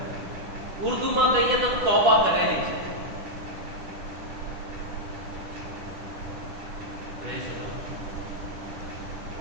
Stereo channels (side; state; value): left; late; 10 ms